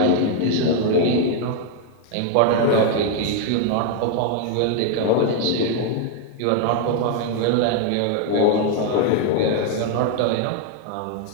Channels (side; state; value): both; different; correlation 0.00